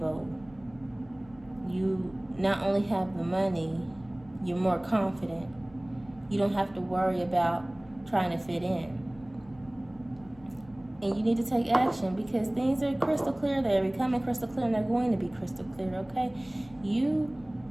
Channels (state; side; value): noise; left; hum, 24 dB below the sound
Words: You not only have the money, you're more confident. You don't have to worry about trying to fit in. And you need to take action, because things are crystal clear. They're becoming crystal clear, and they're going to be crystal clear, okay?